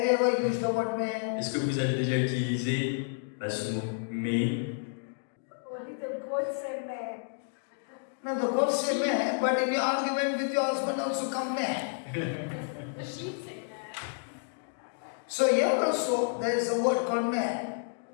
you ever used the word may? est-ce que vous avez déjà utilisé ce mot mais? Only the goat say may. Now the God say may, but in your argument with your husband also come may. The sheep say that. So here also there is a word called may.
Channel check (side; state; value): right; silent; digital silence